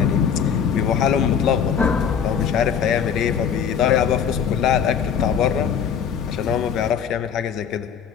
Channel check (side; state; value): right; quieter; 7.6 dB